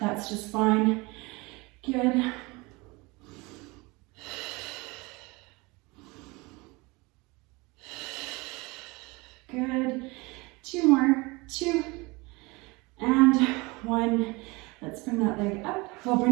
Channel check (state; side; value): quieter; left; 24.9 dB